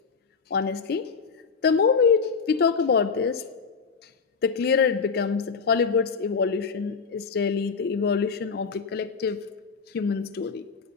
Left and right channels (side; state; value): right; quieter; 5.4 dB